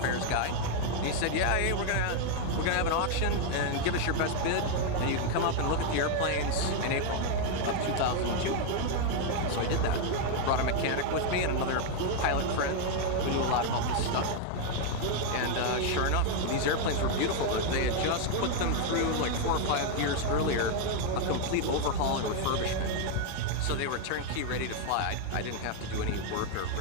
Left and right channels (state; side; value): different; both; correlation 0.00